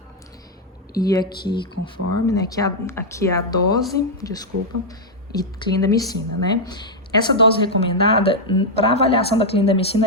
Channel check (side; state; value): both; normal; correlation -0.02